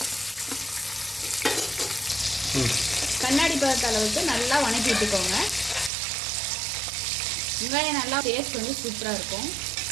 கண்ணாடி பதத்த அளவுக்கு நல்லா வணக்கி விட்டுக்கோங்க. வெங்காயம் நல்லா டேஸ்ட் சூப்பராக இருக்கும்.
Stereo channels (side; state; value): left; drops out; at 5.9 s